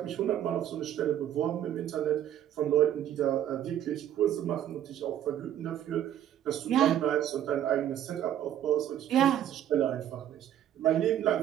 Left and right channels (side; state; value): left; quieter; 10.9 dB